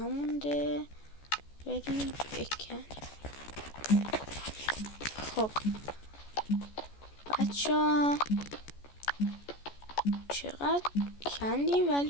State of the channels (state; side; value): late; right; 14 ms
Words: بریم بکن. خب بچه چقدر کندیم ولی